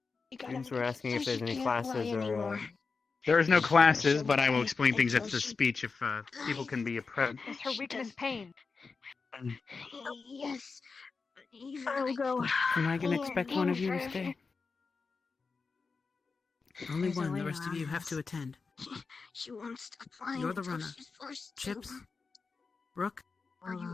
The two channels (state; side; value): quieter; right; 4.6 dB